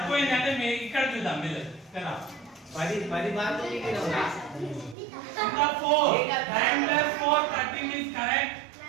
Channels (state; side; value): drops out; left; at 5.0 s